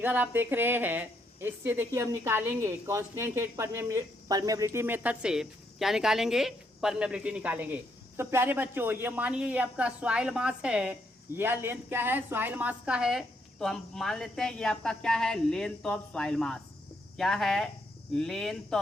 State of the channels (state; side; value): normal; both; correlation 0.75